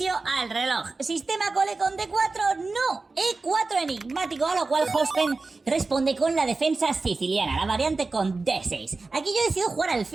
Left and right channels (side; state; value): left; quieter; 3.7 dB